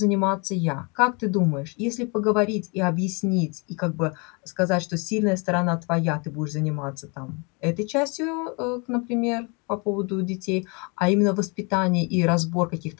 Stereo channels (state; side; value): quieter; right; 31.9 dB